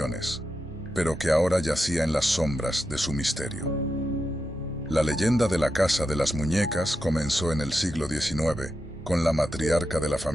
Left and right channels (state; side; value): normal; both; correlation 0.88